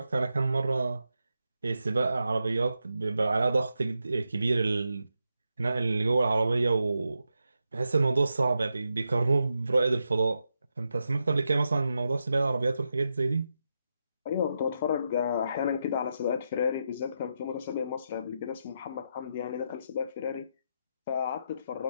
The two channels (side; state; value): both; inverted; correlation -0.86